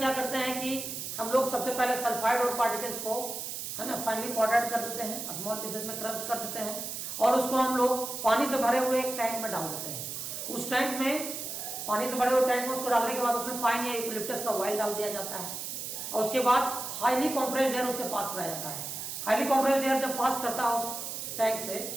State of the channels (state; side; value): noise; right; hiss, 6 dB below the sound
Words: करते हैं कि हम लोग सबसे पहले सल्फाइड ओर पार्टिकल्स को है ना फाइनली पाउडर्ड कर देते हैं, स्मॉल पीसेस में क्रस्ट कर देते हैं, और उसको हम लोग पानी से भरे हुए एक टैंक में डाल देते हैं. उस टैंक में पानी से भरे हुए टैंक में उसको डालने के बाद उसमें पाइन या यूकेलिप्टस का ऑयल डाल दिया जाता है, और उसके बाद हाईली कंप्रेस्ड एयर उससे पास कराया जाता है. हाईली कंप्रेस्ड एयर जब पास करता है उस टैंक से